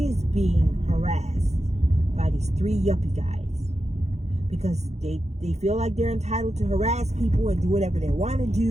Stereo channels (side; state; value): left; late; 0.32 ms